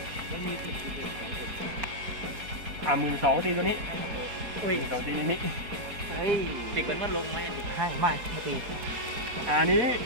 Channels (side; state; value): left; late; 4.5 ms